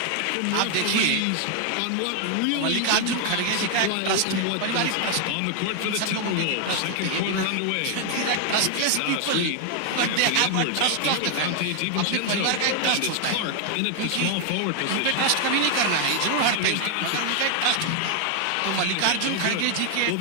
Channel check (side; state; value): both; different; correlation 0.00